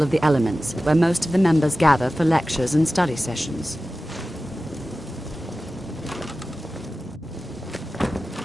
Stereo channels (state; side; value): normal; both; correlation 0.95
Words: of the Elements, where most of the members gather for lectures and study sessions.